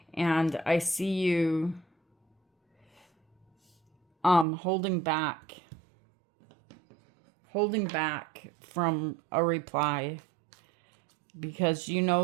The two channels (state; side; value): drops out; left; at 4.5 s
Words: And I see you holding back from a reply, because you